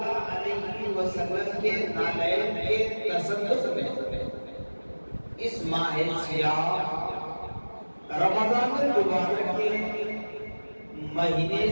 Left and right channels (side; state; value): both; inverted; correlation -1.00